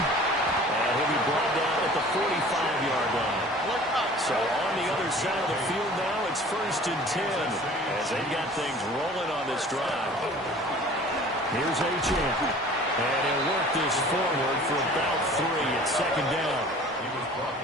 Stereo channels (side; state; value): both; normal; correlation 0.46